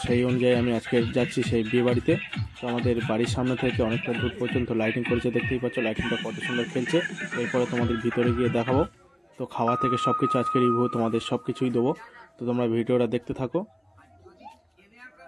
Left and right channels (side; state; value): both; identical; correlation 1.00